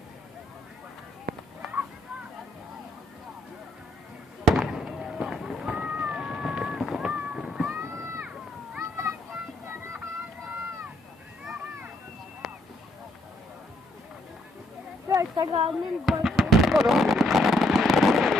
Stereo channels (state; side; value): normal; both; correlation 0.71